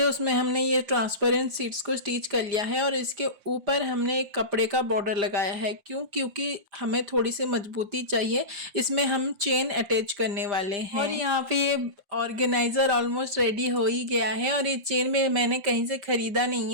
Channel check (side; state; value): left; late; 5.0 ms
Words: उसमें हमने ये ट्रांसपेरेंट सीट्स को स्टिच कर लिया है और इसके ऊपर हमने एक कपड़े का बॉर्डर लगाया है। क्यों? क्योंकि हमें थोड़ी सी मजबूती चाहिए। इसमें हम चेन अटैच करने वाले हैं। और यहाँ पे ये ऑर्गेनाइजर ऑलमोस्ट रेडी हो ही गया है और ये चेन में मैंने कहीं से खरीदा नहीं